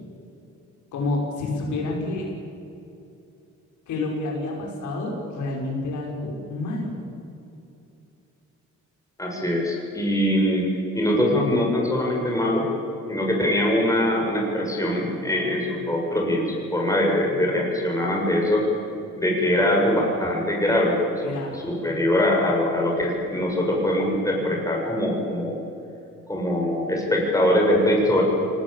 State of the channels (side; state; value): both; normal; correlation 0.47